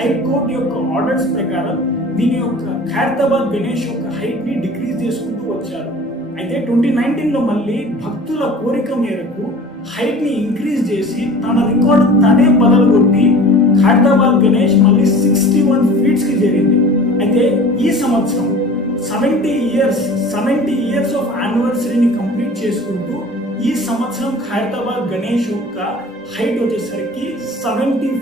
యొక్క ఆర్డర్స్ ప్రకారం దీని యొక్క ఖైరతాబాద్ గణేష్ యొక్క హైట్ ని డిక్రీజ్ చేసుకుంటూ వచ్చారు. అయితే 2019లో మళ్ళీ భక్తుల కోరిక మేరకు హైట్ ని ఇంక్రీజ్ చేసి తన రికార్డు తనే బదలుగొట్టి ఖైరతాబాద్ గణేష్ మళ్ళీ 61 feet కి చేరింది. అయితే ఈ సంవత్సరం 70 years ఆఫ్ యానివర్సరీని కంప్లీట్ చేసుకుంటూ ఈ సంవత్సరం ఖైరతాబాద్ గణేష్ యొక్క హైట్ వచ్చేసరికి 70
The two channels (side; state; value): both; normal; correlation 0.42